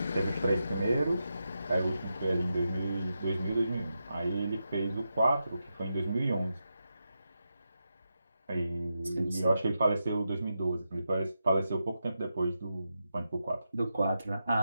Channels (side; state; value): both; inverted; correlation -0.87